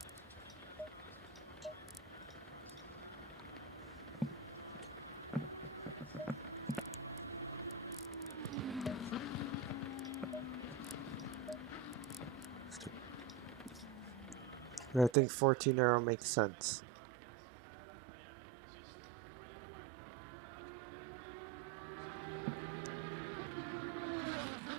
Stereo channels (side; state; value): left; drops out; at 15.2 s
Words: I think 14 arrow makes sense.